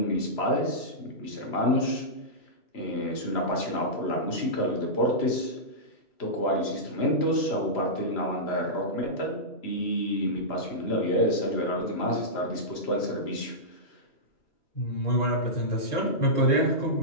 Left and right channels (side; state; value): right; late; 2.9 ms